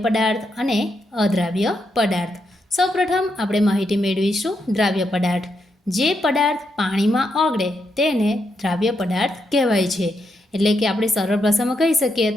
પદાર્થ અને અદ્રાવ્ય પદાર્થ। સૌપ્રથમ આપણે માહિતી મેળવીશું દ્રાવ્ય પદાર્થ। જે પદાર્થ પાણીમાં ઓગળે તેને દ્રાવ્ય પદાર્થ કહેવાય છે। એટલે કે આપણે સરળ ભાષામાં કહી શકીએ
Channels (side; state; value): both; normal; correlation 0.81